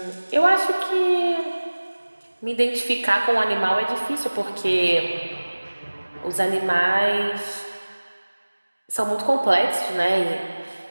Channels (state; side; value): inverted; both; correlation -1.00